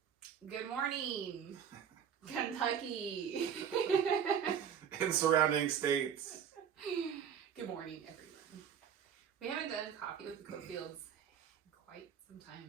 Good morning, Kentucky. In surrounding states. Good morning, everyone. We haven't done coffee with the Cofields in quite some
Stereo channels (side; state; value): left; quieter; 8.2 dB